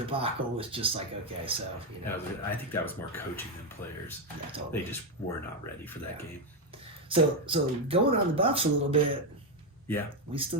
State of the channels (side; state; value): both; normal; correlation 0.06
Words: was just like, okay, so you know. I think that was more coaching than players. Yeah, totally. They just were not ready for that game. So going on the Buffs a little bit. Yeah. We still